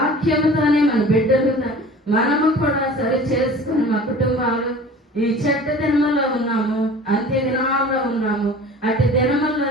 మన బిడ్డలు మనము కూడా సరి చేసుకుని మా కుటుంబాలు ఈ చెడ్డ దినములో ఉన్నాము, అంత్య దినాల్లో ఉన్నాము. అటు దినముల్లో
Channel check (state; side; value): normal; both; correlation 0.42